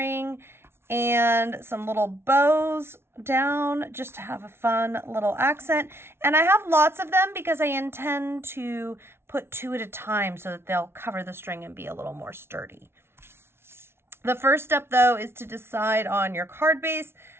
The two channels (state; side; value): late; left; 0.12 ms